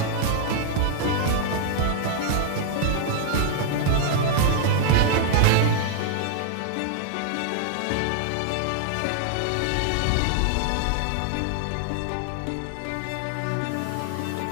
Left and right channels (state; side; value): different; both; correlation -0.01